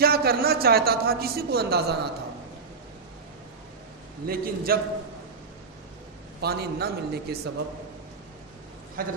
کرنا چاہتا تھا کسی کو اندازہ نہ تھا، لیکن جب پانی نہ ملنے کے سبب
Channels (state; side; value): quieter; left; 4.8 dB